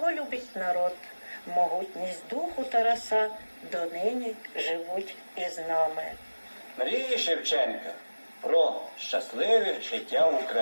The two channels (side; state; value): both; inverted; correlation -1.00